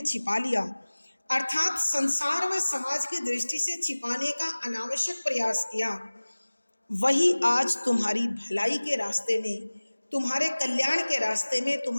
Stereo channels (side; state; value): both; inverted; correlation -1.00